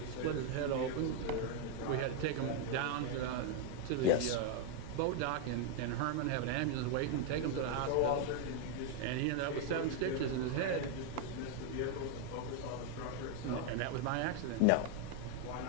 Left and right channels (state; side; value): different; both; correlation 0.01